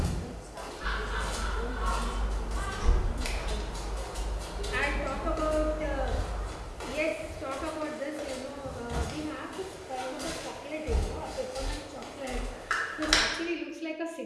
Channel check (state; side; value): identical; both; correlation 1.00